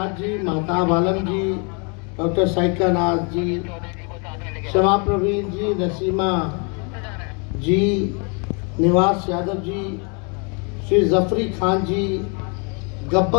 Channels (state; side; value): quieter; right; 35.4 dB